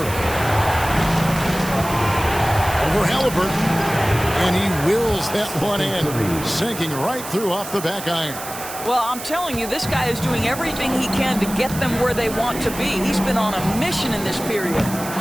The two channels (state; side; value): noise; right; hiss, 11 dB below the sound